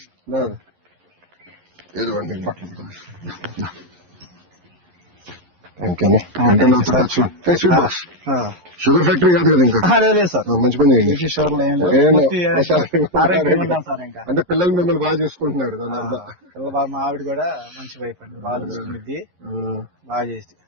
ఏదండి బట్టలు. షుగర్ ఫ్యాక్టరీ కాదు కదా ఇంకా? సార్ మంచి పని అంటే పిల్లలు మిమ్మల్ని బాగా చూసుకుంటున్నారు. దాని అర్థం మా ఆవిడ కూడా మంచి వైఫ్ అండి, బాగా చూసుకుంది, బాగా చేసి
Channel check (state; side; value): late; left; 11 ms